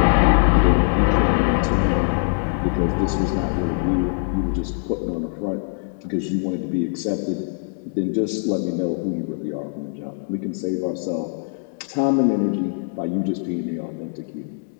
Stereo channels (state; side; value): silent; right; digital silence